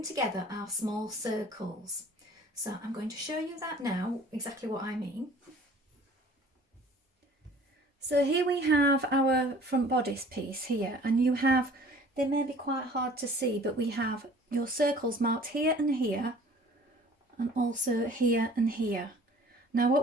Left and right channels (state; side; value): normal; both; correlation 0.50